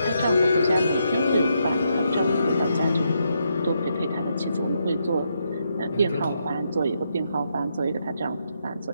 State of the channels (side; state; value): both; inverted; correlation -0.79